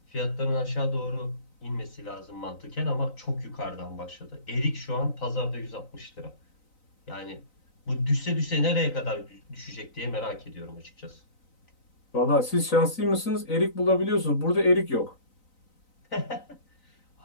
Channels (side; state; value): right; late; 3.9 ms